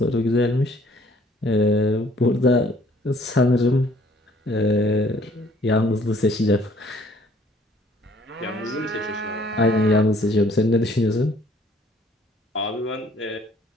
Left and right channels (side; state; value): both; normal; correlation 0.59